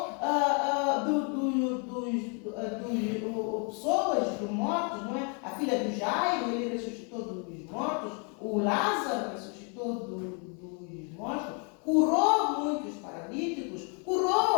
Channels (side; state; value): right; quieter; 37.5 dB